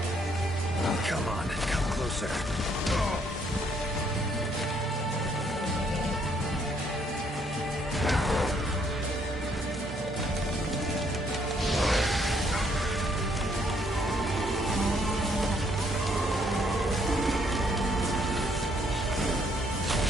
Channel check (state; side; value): normal; both; correlation 0.69